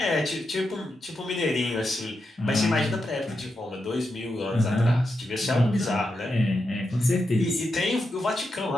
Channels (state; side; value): normal; both; correlation 0.86